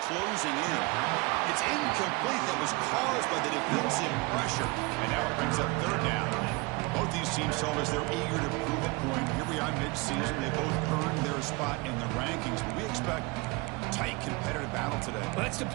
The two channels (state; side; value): quieter; left; 26.2 dB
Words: closing in. It's incomplete. That was caused by the defensive pressure. And now it brings up third down. Both these teams told us they're eager to prove a point. Here we are mid-season. They both earned their spot in the rankings. But we expect tight competitive battle today. Well, that's the